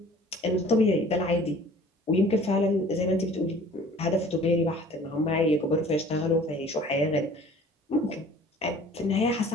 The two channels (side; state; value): both; normal; correlation 0.49